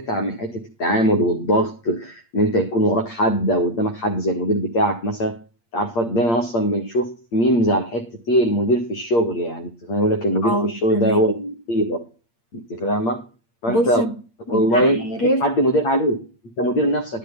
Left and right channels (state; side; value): late; right; 8.6 ms